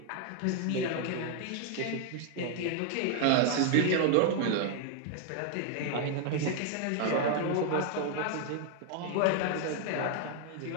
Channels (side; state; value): both; different; correlation 0.00